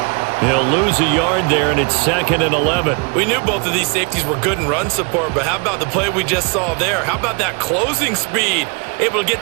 He'll lose a yard there, and it's 2nd and 11. We knew both of these safeties were good in run support, but how about the play we just saw there? How about that closing speed? Able to get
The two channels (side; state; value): left; quieter; 32.5 dB